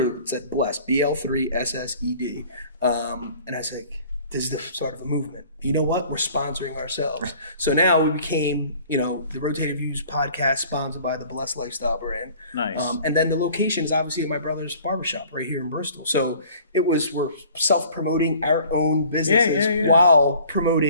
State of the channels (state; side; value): inverted; both; correlation -0.51